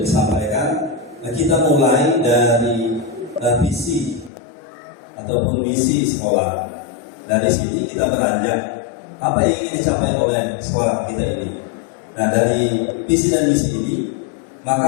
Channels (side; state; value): right; drops out; at 4.3 s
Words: disampaikan, kita mulai dari visi ataupun misi sekolah. Dari sini kita beranjak apa yang ingin dicapai oleh sekolah kita ini. Nah, dari visi dan misi ini